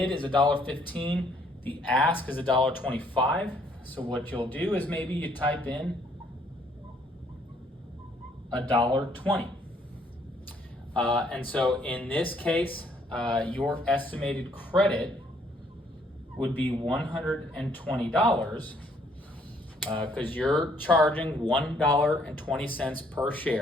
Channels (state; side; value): normal; both; correlation 0.66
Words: is $1.15, the ask is $1.25. So what you'll do is maybe you type in $1.20. And so in this case, your estimated credit would be $120 because you're charging $1.20 per